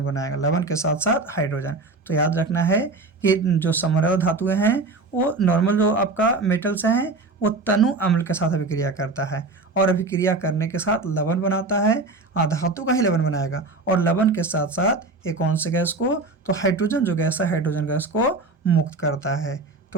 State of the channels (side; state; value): left; quieter; 3.5 dB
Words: बनाएगा, लवण के साथ साथ हाइड्रोजन। तो याद रखना है कि जो समरल धातुएं हैं वो नॉर्मल जो आपका मेटल्स हैं वो तनु अम्ल के साथ अभिक्रिया करता है और अभिक्रिया करने के साथ लवण बनाता है, धातु का ही लवण बनाएगा, और लवण के साथ साथ एक कौन से गैस को? तो हाइड्रोजन जो गैस है हाइड्रोजन गैस को मुक्त करता है।